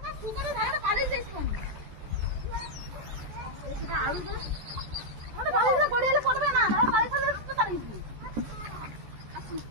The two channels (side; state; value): left; late; 14 ms